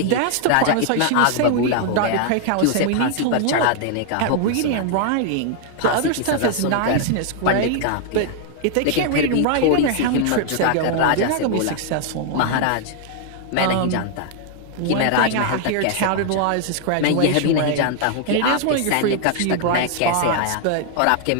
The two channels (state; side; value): different; both; correlation 0.00